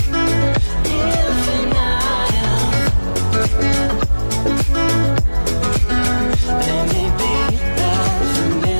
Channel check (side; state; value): both; inverted; correlation -1.00